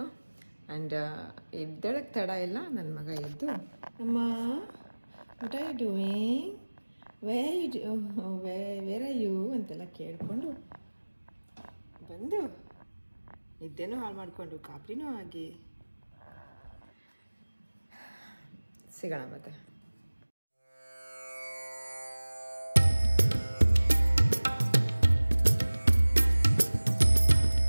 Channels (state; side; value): inverted; both; correlation -1.00